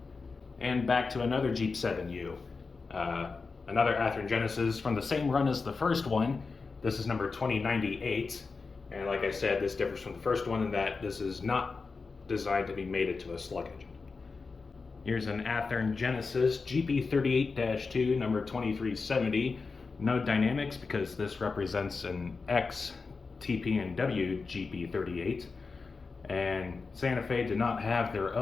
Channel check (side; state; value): right; quieter; 4.4 dB